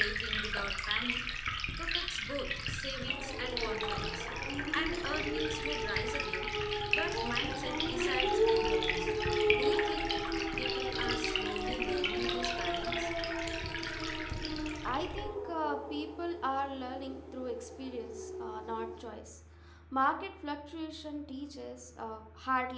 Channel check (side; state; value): both; identical; correlation 1.00